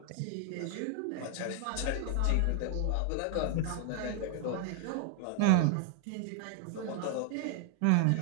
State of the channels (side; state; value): both; different; correlation 0.00